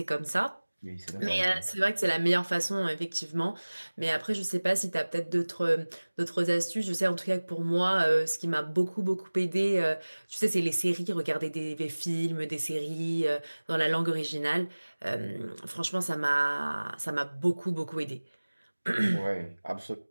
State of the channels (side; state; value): both; inverted; correlation -1.00